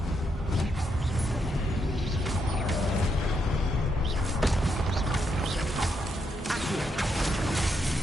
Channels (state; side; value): normal; both; correlation 0.79